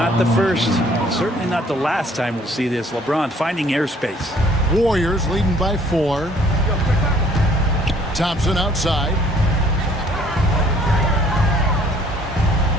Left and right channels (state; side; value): normal; both; correlation 0.59